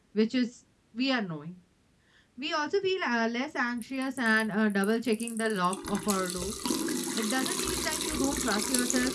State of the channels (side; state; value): both; identical; correlation 1.00